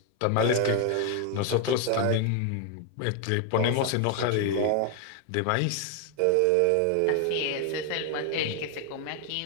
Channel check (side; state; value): both; different; correlation 0.01